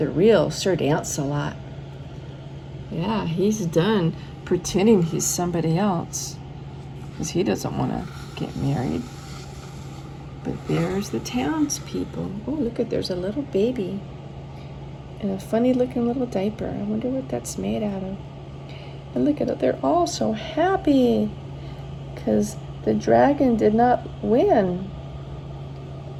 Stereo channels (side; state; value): both; identical; correlation 1.00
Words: real Sir Lancelot. Yeah, he's done pretending he's somebody else, because he doesn't want to get married. But there's the townspeople. Oh, look at, there's a little baby in a funny looking little diaper. I wonder what that's made out of. And look at it, they're all so happy because the dragon did not win.